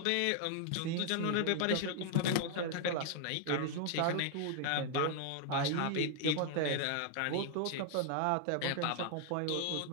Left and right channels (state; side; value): different; both; correlation 0.00